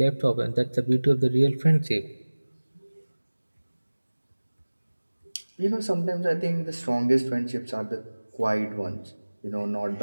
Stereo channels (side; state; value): both; inverted; correlation -1.00